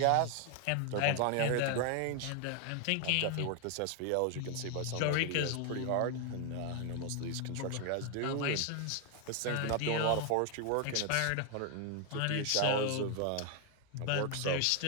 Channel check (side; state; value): both; different; correlation 0.01